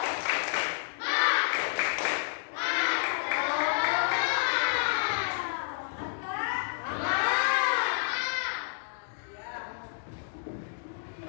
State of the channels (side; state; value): right; silent; digital silence